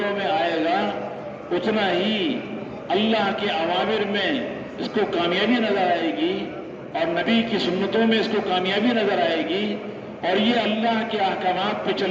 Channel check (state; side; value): identical; both; correlation 1.00